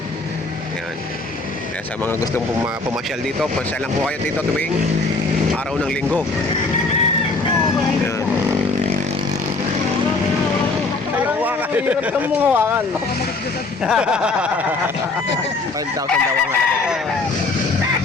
Ayan. Kaya sa mga gustong pumasyal dito, pasyal lang po kayo dito tuwing araw ng linggo. Ayan. Ayaw hawakan. Hirap kang mong hawakan. 5,000 daw ang halaga.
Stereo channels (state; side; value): quieter; right; 3.5 dB